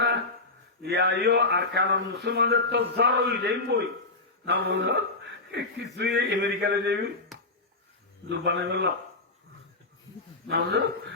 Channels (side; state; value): right; quieter; 3.2 dB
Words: না ইয়া আর কারণ মুসলমানদের তো জ্বর হয়ে যাই বই না বুঝো কিছুই আমেরিকাতে যাবি দুবানে গেল না বুঝো